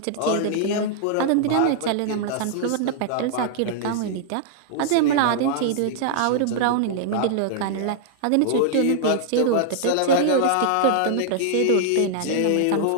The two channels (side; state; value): both; different; correlation -0.01